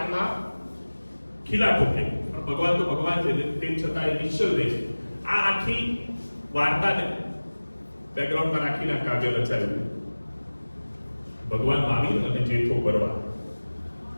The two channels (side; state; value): both; inverted; correlation -1.00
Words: ખીલા ઠોકે. પણ ભગવાન તો ભગવાન છે તેમ છતાં એ નિશ્ચલ રહે છે. આ આખી વાર્તાને બેકગ્રાઉન્ડમાં રાખીને કાવ્ય રચાયું. ભગવાન મહાવીર અને જેઠો ભરવાડ.